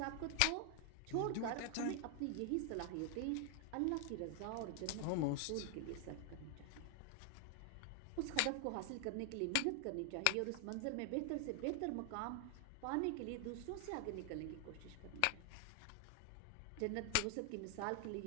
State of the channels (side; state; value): both; different; correlation 0.00